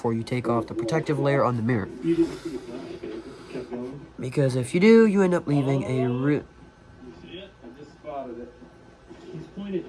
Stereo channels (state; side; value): identical; both; correlation 1.00